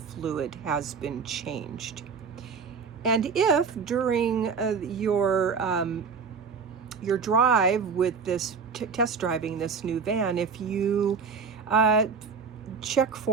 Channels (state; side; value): quieter; left; 5.5 dB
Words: has been changed. And if during your drive with this test driving this new van, if you check